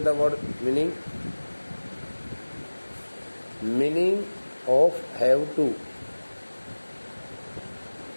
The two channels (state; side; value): inverted; both; correlation -1.00